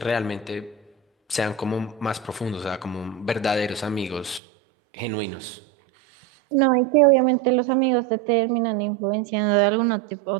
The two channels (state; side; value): drops out; left; at 4.4 s